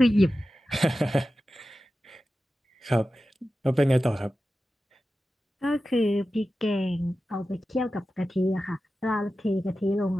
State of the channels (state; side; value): normal; both; correlation 0.94